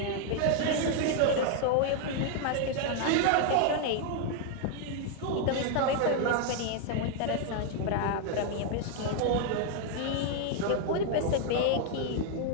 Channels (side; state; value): both; different; correlation 0.00